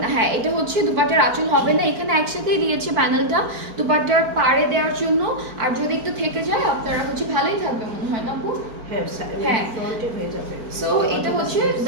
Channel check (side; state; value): left; late; 4.5 ms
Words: না। হ্যাঁ, এটা হচ্ছে দুপাট্টার আঁচল হবে না, এখানে একসাথেই দিয়েছে প্যানেলটা দুপাট্টার পাড়ে দেওয়ার জন্য। আর যদি একটু থেকে যায় আপনারা হচ্ছে ভালোই থাকবে মনে হয় না আপু? হ্যাঁ ফ্রন্টে হয়ে যাবে। সো এটা হচ্ছে